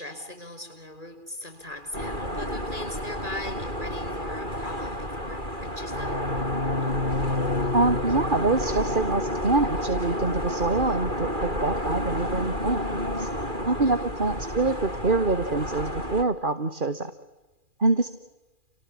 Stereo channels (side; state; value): left; late; 2.4 ms